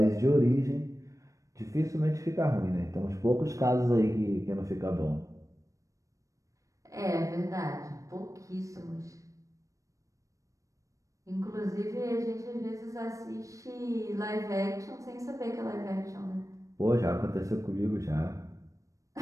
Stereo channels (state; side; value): late; left; 0.16 ms